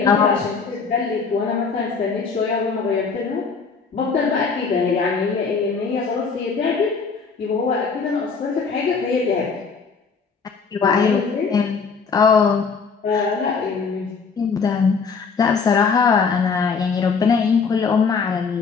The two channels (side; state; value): right; quieter; 5.3 dB